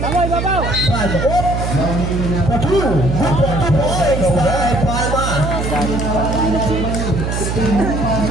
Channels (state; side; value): noise; right; hum, 2 dB below the sound